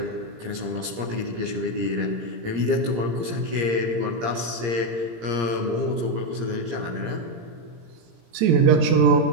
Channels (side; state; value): left; late; 17 ms